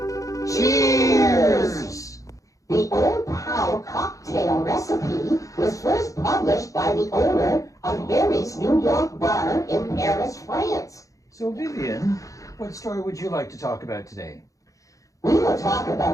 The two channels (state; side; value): late; right; 0.16 ms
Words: Cheers! The OodnPal Cocktail recipe was first published by the owner of Harry's New York bar in Paris, France. So, Vivian, what story would you like to talk about today? We will talk